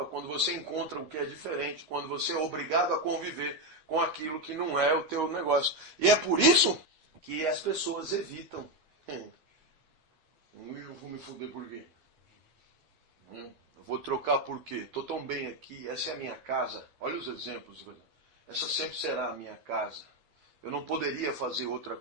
quando você encontra o que é diferente, quando você é obrigado a conviver com aquilo que não é o teu negócio. E é por isso que as pessoas evitam. Eu vou me fuder por quê? Eu vou trocar por quê? Estou tão bem aqui, essa é a minha casa. Olha os exemplos. Essa sempre será a minha casa. Eu não poderia fazer outra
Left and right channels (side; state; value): left; late; 13 ms